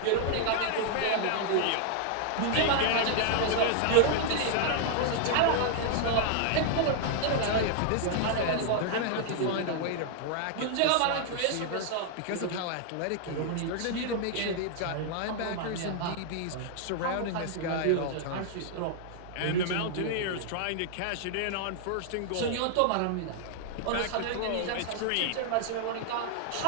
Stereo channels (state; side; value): different; both; correlation 0.00